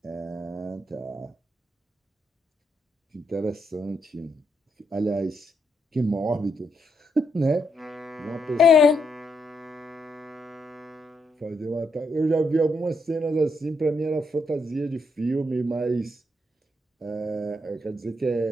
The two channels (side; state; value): both; normal; correlation 0.78